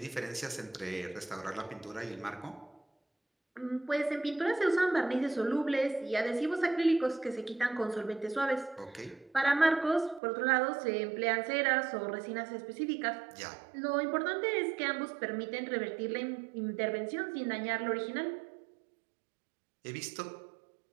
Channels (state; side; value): drops out; left; at 10.2 s